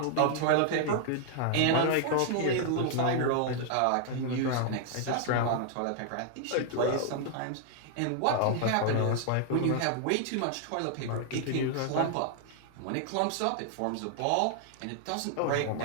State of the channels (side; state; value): both; different; correlation 0.00